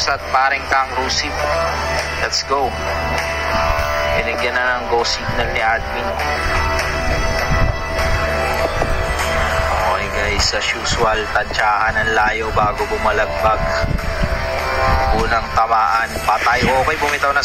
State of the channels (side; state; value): both; identical; correlation 1.00